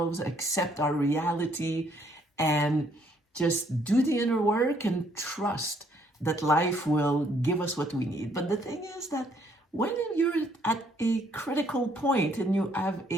accept our reality, and just do the inner work and trust that life will give us what we need. But the thing is that when you're at a critical point and you have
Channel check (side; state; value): both; normal; correlation 0.67